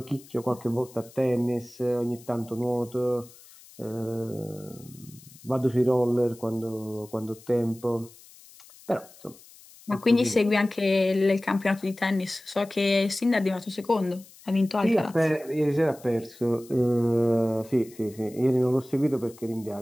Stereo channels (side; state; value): left; noise; hiss, 23 dB below the sound